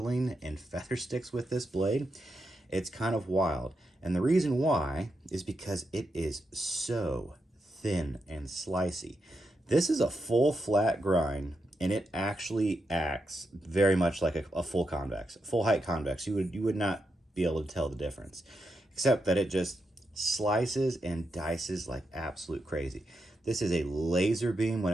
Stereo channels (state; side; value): normal; both; correlation 0.85